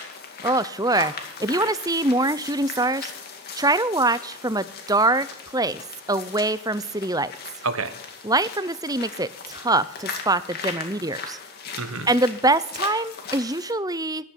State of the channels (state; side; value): normal; both; correlation 0.29